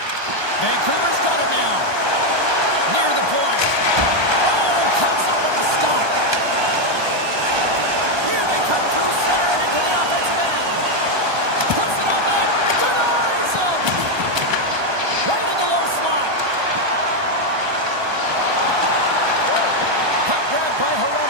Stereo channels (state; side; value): late; left; 1.2 ms